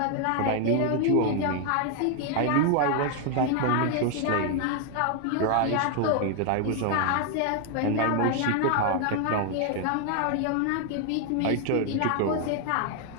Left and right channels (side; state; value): both; different; correlation 0.00